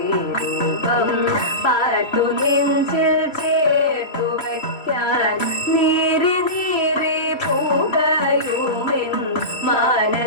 പാർത്തു നെഞ്ചിൽ ചേർത്തു വയ്ക്കാൻ നീറി നീറി പൂകയുമെൻ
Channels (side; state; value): right; late; 3.0 ms